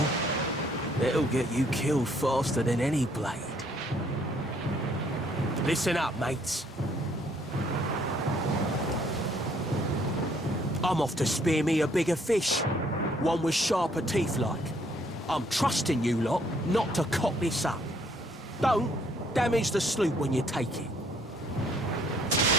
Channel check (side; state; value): both; normal; correlation 0.65